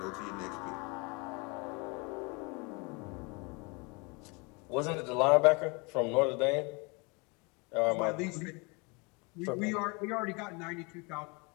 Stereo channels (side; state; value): right; quieter; 29.5 dB